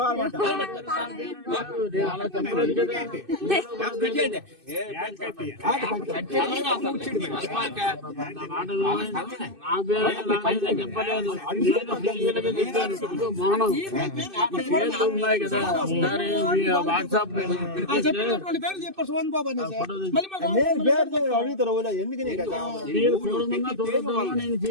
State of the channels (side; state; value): left; late; 2.6 ms